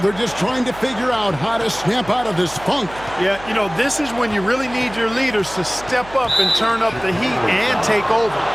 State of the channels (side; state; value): right; noise; hum, 18 dB below the sound